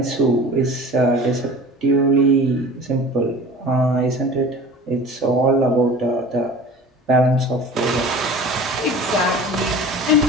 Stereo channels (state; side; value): normal; both; correlation 0.40